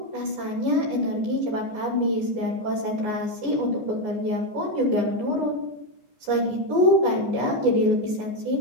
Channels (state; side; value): late; left; 14 ms